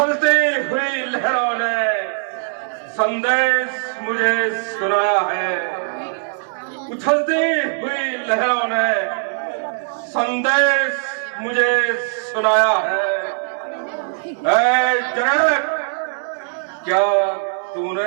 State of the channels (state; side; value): silent; left; 60 dB below the other